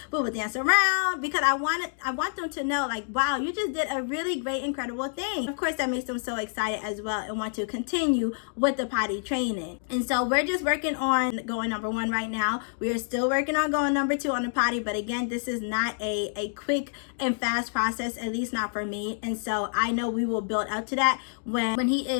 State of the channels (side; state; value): right; silent; digital silence